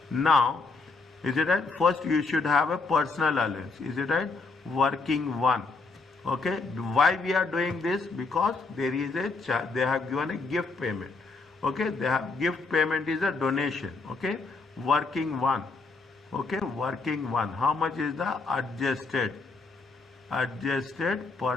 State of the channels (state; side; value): quieter; right; 4.0 dB